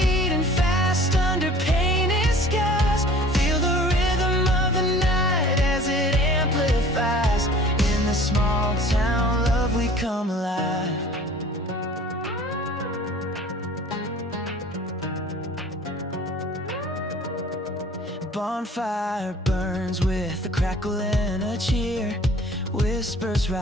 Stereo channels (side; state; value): both; normal; correlation 0.48